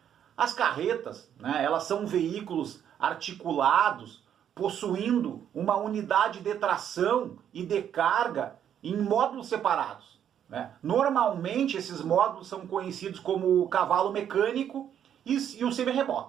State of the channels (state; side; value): quieter; left; 9.4 dB